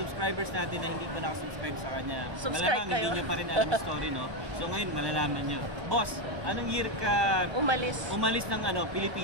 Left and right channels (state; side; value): late; left; 1.2 ms